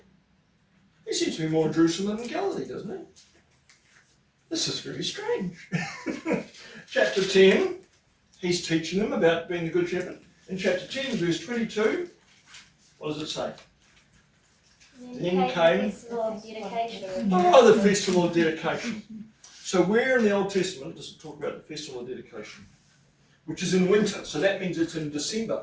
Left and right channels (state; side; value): identical; both; correlation 1.00